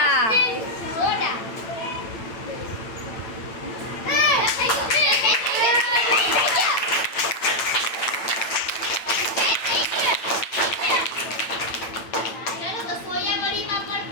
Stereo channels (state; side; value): late; right; 8.9 ms